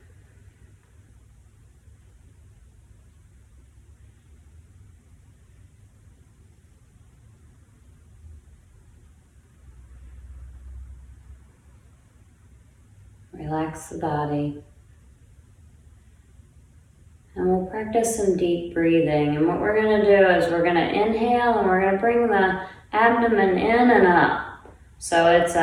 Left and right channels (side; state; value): both; identical; correlation 1.00